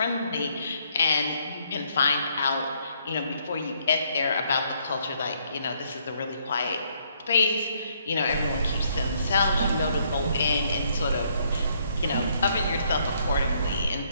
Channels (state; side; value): inverted; both; correlation -0.70